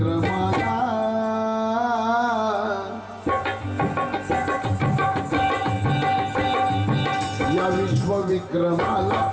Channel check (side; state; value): both; identical; correlation 1.00